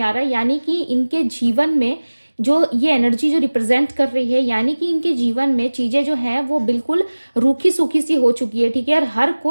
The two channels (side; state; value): both; inverted; correlation -1.00